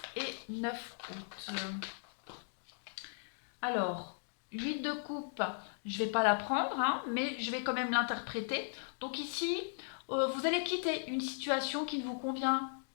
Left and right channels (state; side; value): silent; right; digital silence